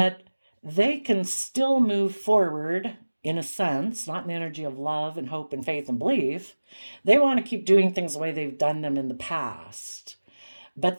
they can still move forward, in a sense, not in the energy of love and hope and faith and belief. They want to keep doing things the way they've done them in the past.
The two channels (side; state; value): both; inverted; correlation -1.00